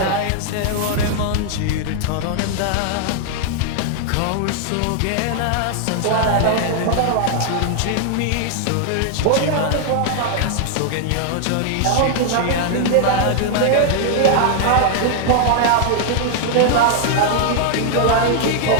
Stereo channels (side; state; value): both; different; correlation -0.01